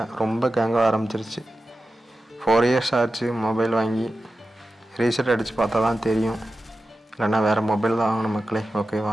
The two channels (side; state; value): both; normal; correlation 0.93